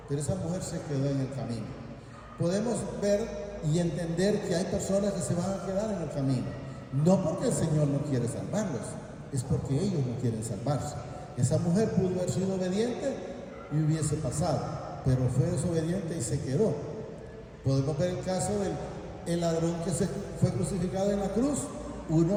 pero esa mujer se quedó en el camino. Podemos ver y entender que hay personas que se van a quedar en el camino, no porque el Señor no quiere salvarlos, es porque ellos no quieren salvarse. Esa mujer pudo haber sido obediente y hubiese pasado, pero fue desobediente y se quedó. Podemos ver el caso del ladrón que se fue crucificado en la cruz.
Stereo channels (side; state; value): both; identical; correlation 1.00